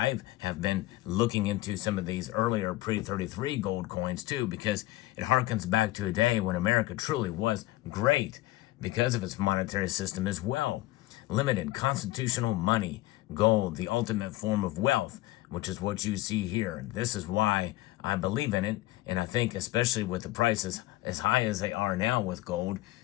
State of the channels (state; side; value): quieter; right; 17.8 dB